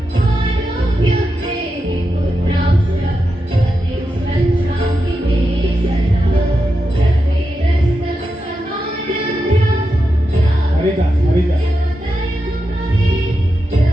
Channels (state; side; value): normal; both; correlation 0.88